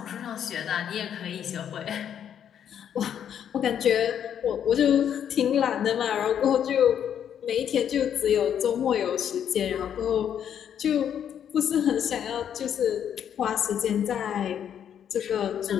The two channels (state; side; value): quieter; right; 9.1 dB